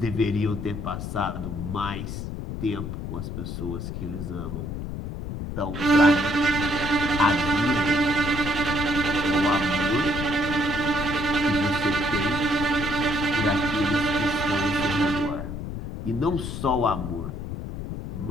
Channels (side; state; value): left; noise; rumble, 6 dB below the sound